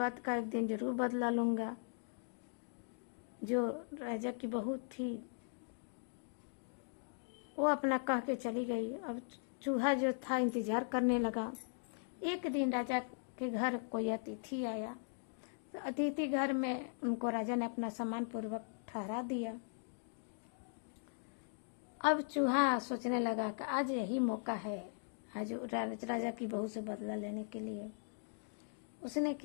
का एक दिन जरूर बदला लूँगा। जो राजा की बहू थी वो अपना कह के चली गई। अब चूहा जो था इंतज़ार करने लगा। एक दिन राजा के घर कोई अतिथि आया। तो अतिथि घर में उनको राजा ने अपना सम्मान पूर्वक ठहरा दिया। अब चूहा सोचने लगा कि आज यही मौका है, आज राजा की बहू से बदला लेने के लिए। उसने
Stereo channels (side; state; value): right; silent; digital silence